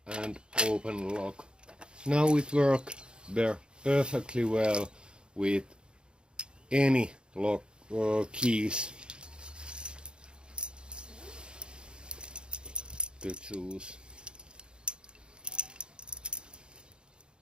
and open lock. Now it works perfectly well with any lock keys to choose.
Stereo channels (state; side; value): late; left; 0.051 ms